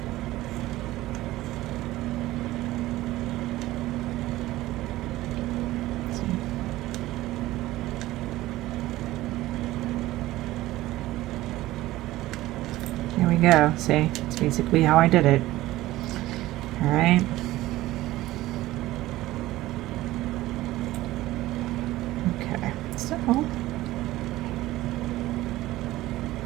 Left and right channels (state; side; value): quieter; left; 16.8 dB